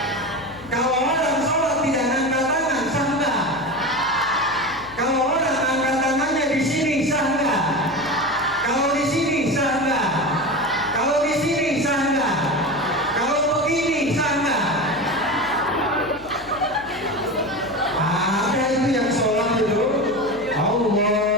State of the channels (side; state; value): left; noise; hum, 21 dB below the sound